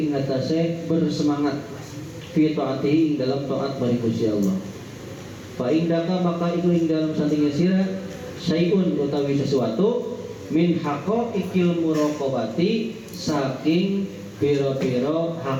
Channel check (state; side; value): identical; both; correlation 1.00